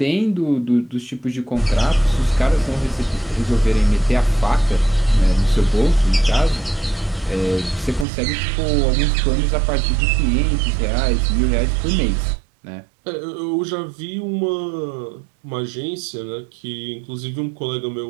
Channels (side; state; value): left; drops out; at 8.1 s